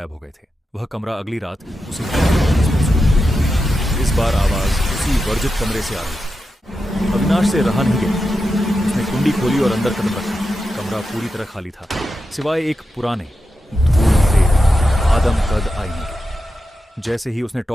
हो गए थे। वह कमरा अगली रात उसे इस बार आवाज उसी वर्जित कमरे से आ रही थी। अविनाश से रहा नहीं गया। उसने कुंडी खोली और अंदर कदम रखा। कमरा पूरी तरह खाली था, सिवाय एक पुराने धूल आदम कद आईने के। जैसे ही उसने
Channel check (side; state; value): both; normal; correlation 0.89